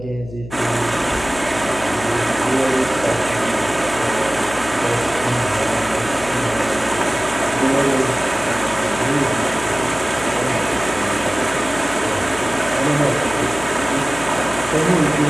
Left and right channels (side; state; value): left; noise; hum, 14 dB below the sound